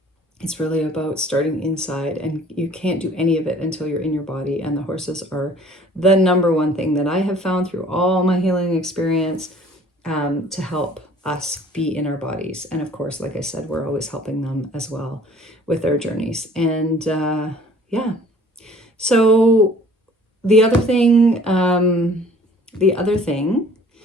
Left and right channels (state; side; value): normal; both; correlation 0.52